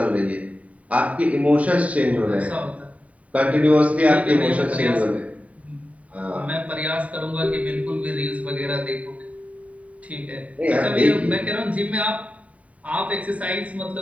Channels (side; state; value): left; late; 0.068 ms